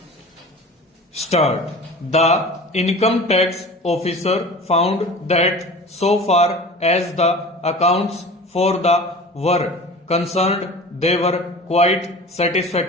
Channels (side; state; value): both; normal; correlation 0.38